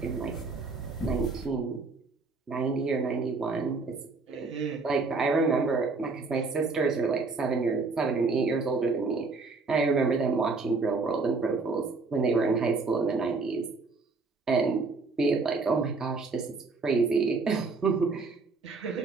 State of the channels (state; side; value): quieter; left; 4.1 dB